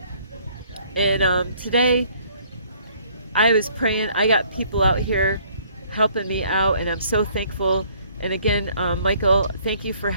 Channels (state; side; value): inverted; both; correlation -0.61